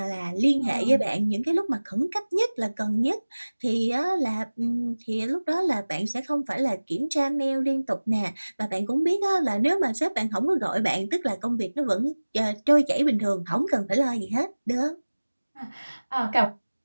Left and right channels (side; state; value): both; inverted; correlation -1.00